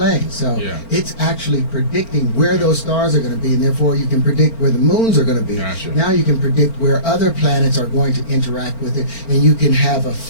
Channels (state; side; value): late; right; 4.4 ms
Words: So it's actually predicting where those stars are going to be, and therefore you can predict where the moons are going to be. Now you can predict where other planets are going to interact with it, and you can have a